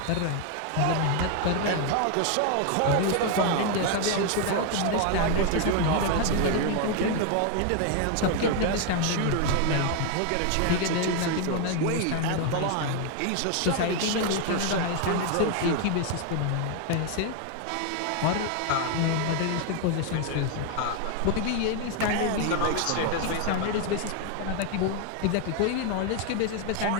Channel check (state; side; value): different; both; correlation 0.01